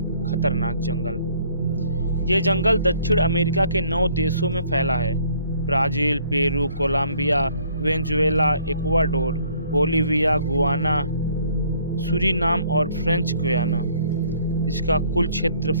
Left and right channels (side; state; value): both; inverted; correlation -0.62